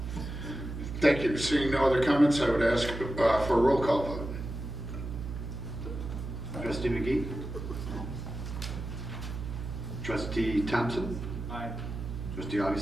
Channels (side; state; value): right; noise; hum, 7 dB below the sound